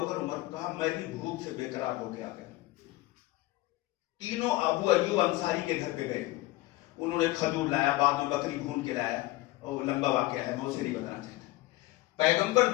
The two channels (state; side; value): quieter; right; 18.5 dB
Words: عمر؟ کہا میں بھی بھوک سے بے قرار ہو کے آ گیا. تینوں ابو ایوب انصاری کے گھر پہ گئے. انہوں نے کھجور لایا, بعد میں بکری بھون کے لایا, اور لمبا واقعہ ہے, میں اسے نہیں بتانا چاہتا. پیغمبر